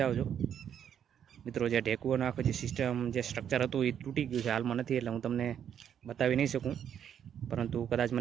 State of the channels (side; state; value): left; quieter; 9.0 dB